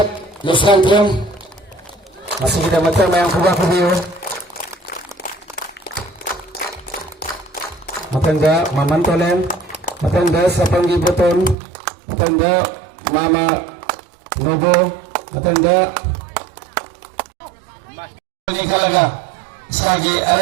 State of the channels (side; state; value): left; drops out; at 11.6 s